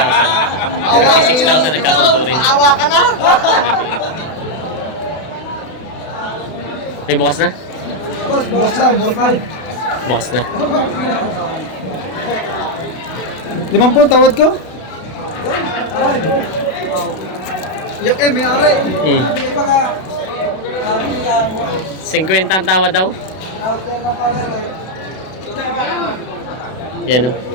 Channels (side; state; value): right; late; 32 ms